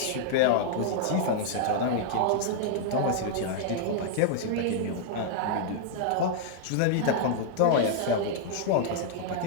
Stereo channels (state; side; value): different; both; correlation -0.01